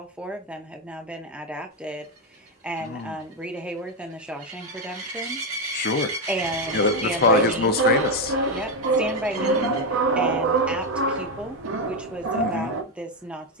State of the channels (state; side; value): normal; both; correlation 0.06